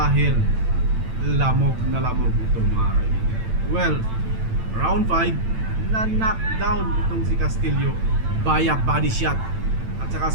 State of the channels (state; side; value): late; left; 8.9 ms